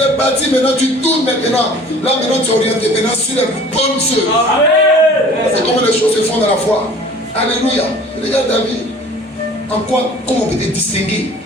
parti, maintenant tu tournes maintenant. Là maintenant tu es orienté maintenant sur les bonnes œuvres. Amen. C'est comment les choses se font dans la foi. Alléluia. Regarde David. En quoi, comment on peut te distinguer?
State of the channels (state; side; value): normal; both; correlation 0.47